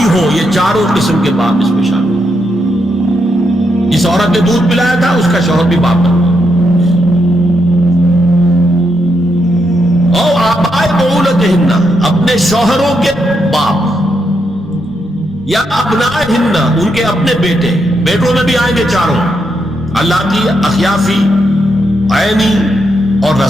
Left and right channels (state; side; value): normal; both; correlation 0.81